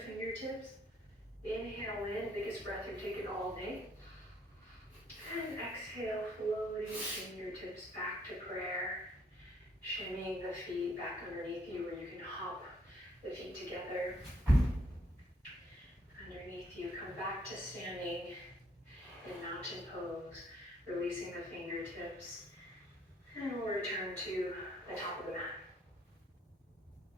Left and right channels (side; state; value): both; normal; correlation 0.66